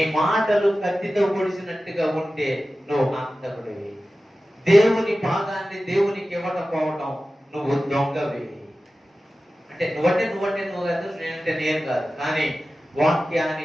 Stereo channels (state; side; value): normal; both; correlation 0.95